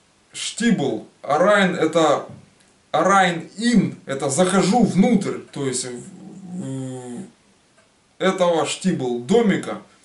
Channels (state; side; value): identical; both; correlation 1.00